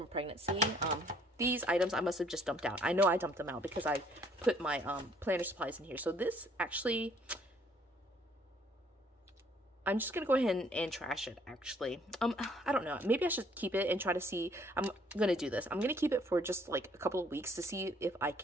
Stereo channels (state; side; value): normal; both; correlation 0.62